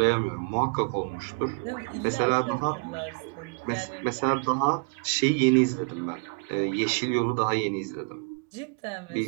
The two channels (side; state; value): left; quieter; 36.0 dB